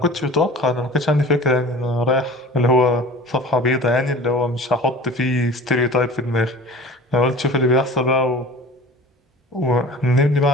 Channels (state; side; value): normal; both; correlation 0.41